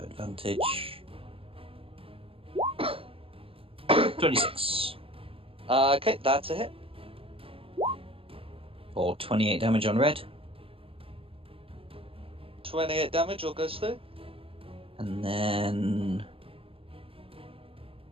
26. Okay, that's a hit. for 28 damage on red. 28 damage, all goes through. And then...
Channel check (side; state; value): left; late; 0.27 ms